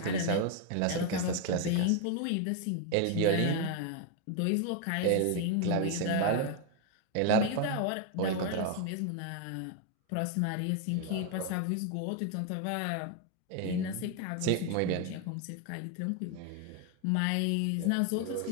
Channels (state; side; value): different; both; correlation 0.01